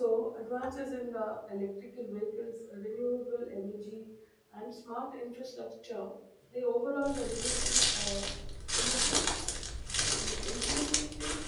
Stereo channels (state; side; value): identical; both; correlation 1.00